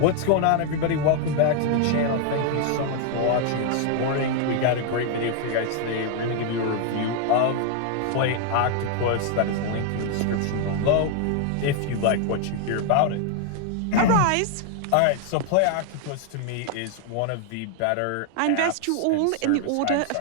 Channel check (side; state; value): both; different; correlation 0.00